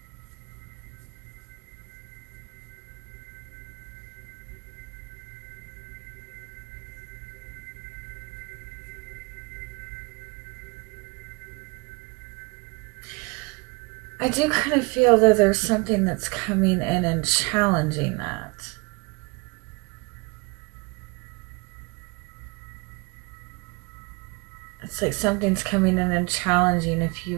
I do kind of feel that there's something that's coming in and challenging that. It's like something's coming in and challenging if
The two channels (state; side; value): quieter; left; 28.4 dB